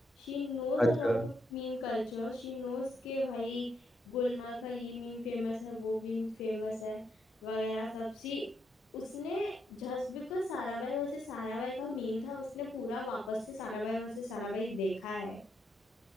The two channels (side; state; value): both; normal; correlation 0.78